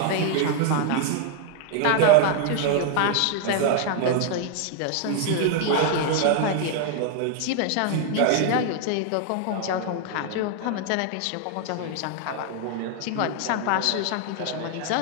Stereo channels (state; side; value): different; both; correlation 0.00